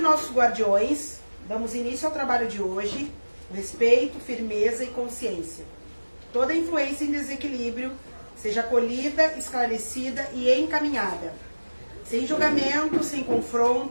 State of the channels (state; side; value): inverted; both; correlation -1.00